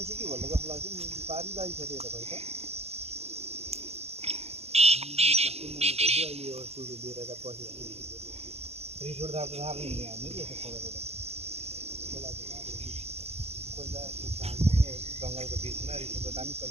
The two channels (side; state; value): left; late; 0.30 ms